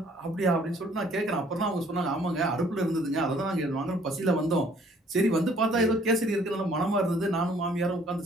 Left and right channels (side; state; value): both; normal; correlation 0.59